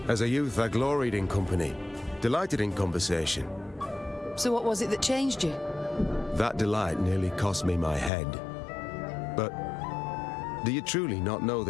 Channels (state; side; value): drops out; right; at 8.1 s